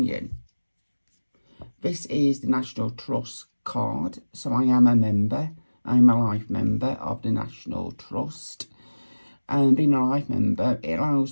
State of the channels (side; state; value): both; inverted; correlation -1.00